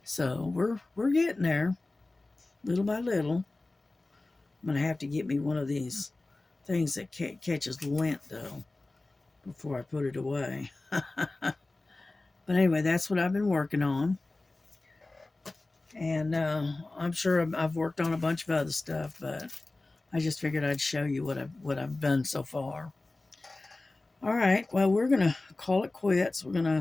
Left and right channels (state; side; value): quieter; right; 3.1 dB